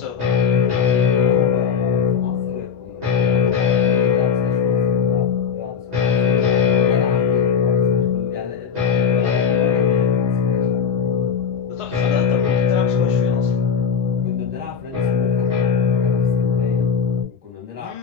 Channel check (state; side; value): quieter; right; 7.0 dB